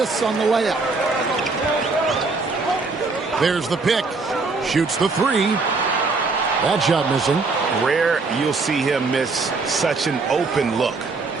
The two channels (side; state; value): left; quieter; 3.9 dB